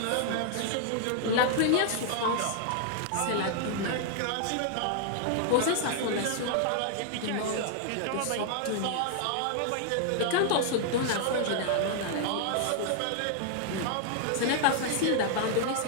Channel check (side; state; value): both; different; correlation 0.00